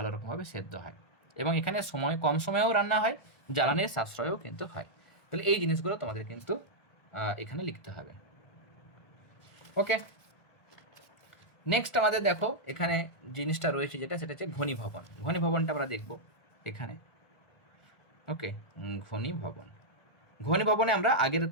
রকমভাবে সেদ্ধ হয়, এবং এখানে কম সময়েও রান্না হয়, জ্বালানির সাশ্রয়ও কিন্তু হয়। তাহলে এই জিনিসগুলো তোমাদের কিন্তু এখানে লিখতে হবে। ওকে, নেক্সট আমাদের দেখো এখানে জিনিসটা রয়েছে যেটা, সেটা হচ্ছে ঘনীভবন। ঘনীভবনটা আমরা দেখব এখানে। ওকে, ঘনীভবন। ঘনীভবনে আমরা আগের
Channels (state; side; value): late; right; 1.3 ms